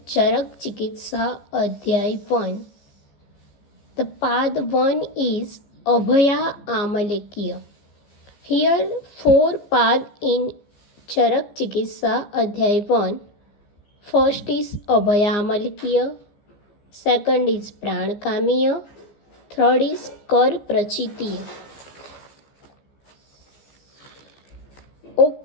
Charak Chikitsa Adhyay 1. The part 1 is Abhaya Amalekya. Here, 4 paths in Charak Chikitsa Adhyay 1. First is Abhaya Amalekya. Second is Pranakamiya. Third is Kar Prachitiya.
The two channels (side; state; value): right; late; 15 ms